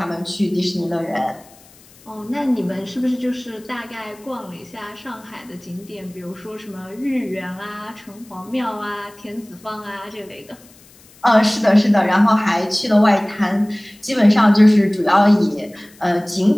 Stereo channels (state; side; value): noise; left; hiss, 26 dB below the sound